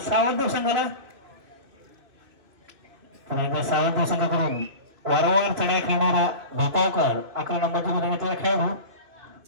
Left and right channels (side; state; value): left; late; 2.6 ms